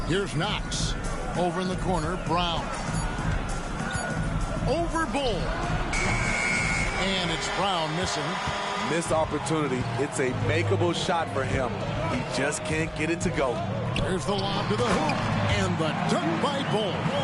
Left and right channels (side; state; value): both; identical; correlation 1.00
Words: Here's Knox. Over in the corner, Brown. Over Bull. And it's Brown missing. Missed opportunity. It's a makeable shot for him. He just can't get it to go. There's the lob to the hoop. And the dunk by Bull.